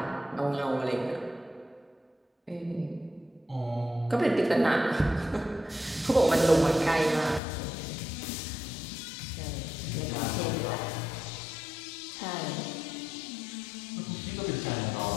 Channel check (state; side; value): drops out; right; at 7.4 s